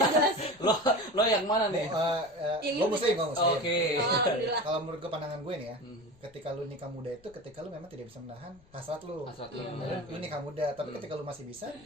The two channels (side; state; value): left; noise; rumble, 28 dB below the sound